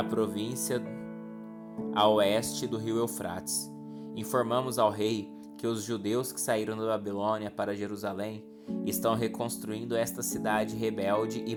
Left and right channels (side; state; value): both; identical; correlation 1.00